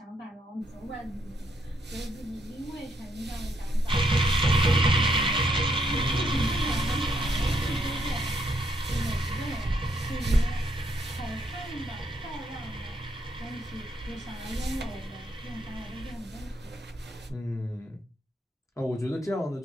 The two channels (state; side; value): normal; both; correlation 0.74